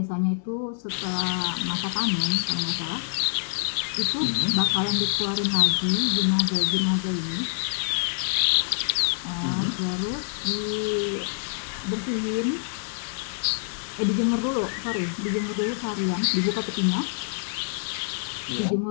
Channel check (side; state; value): right; silent; digital silence